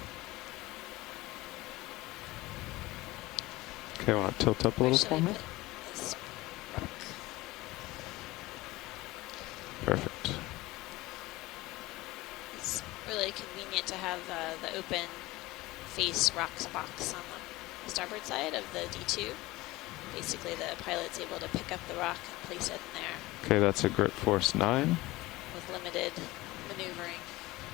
Okay, want to tilt up a little Should for I me? put this? Perfect. It's really convenient to have the open face rocks box on the starboard side of the D2. Basically, the pilot's able to pick up the rock and place it in there Okay, that's a grip force 9. with limited maneuvering.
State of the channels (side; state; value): right; quieter; 19.6 dB